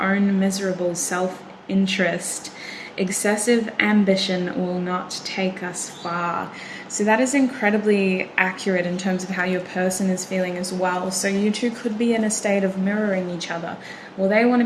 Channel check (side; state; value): both; identical; correlation 1.00